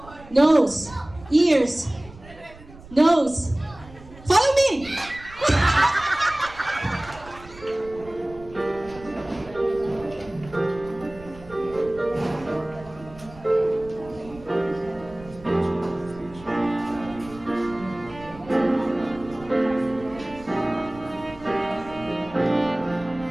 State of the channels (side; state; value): right; noise; rumble, 19 dB below the sound